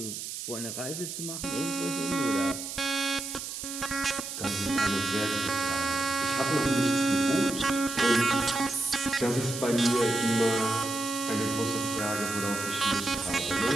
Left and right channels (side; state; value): right; noise; hiss, 7 dB below the sound